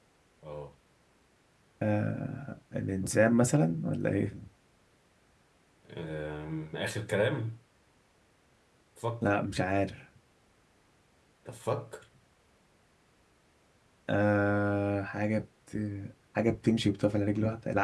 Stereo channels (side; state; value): both; identical; correlation 1.00